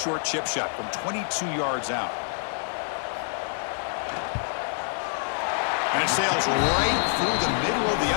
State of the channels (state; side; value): silent; right; digital silence